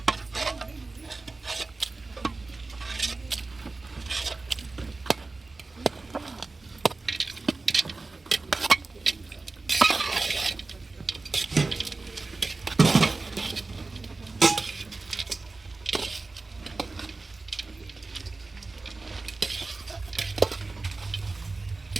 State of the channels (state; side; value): quieter; left; 3.6 dB